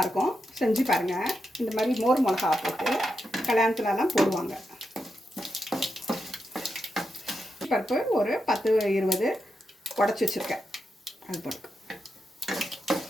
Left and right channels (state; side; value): normal; both; correlation 0.86